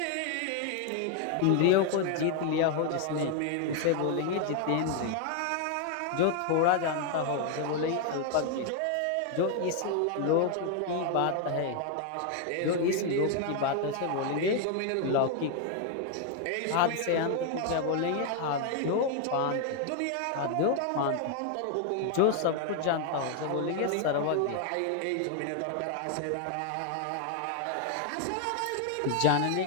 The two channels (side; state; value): both; different; correlation 0.01